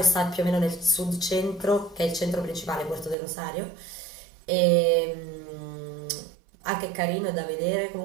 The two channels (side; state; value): left; drops out; at 3.2 s